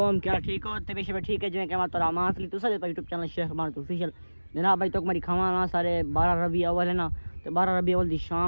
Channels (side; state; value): both; inverted; correlation -1.00